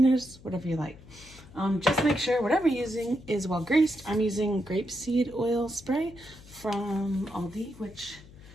whatever you like. Just make sure whatever you're using is well greased. I'm using grapeseed oil spray from Aldi, which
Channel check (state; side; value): noise; left; hum, 21 dB below the sound